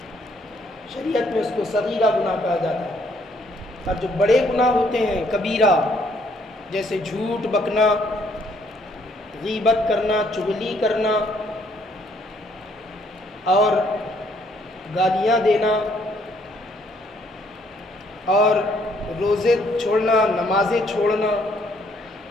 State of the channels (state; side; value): normal; both; correlation 0.67